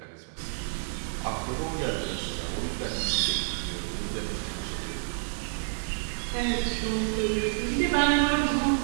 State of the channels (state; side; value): silent; left; digital silence